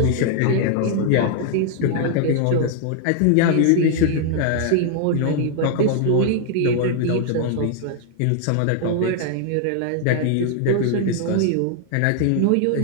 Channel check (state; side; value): different; both; correlation 0.00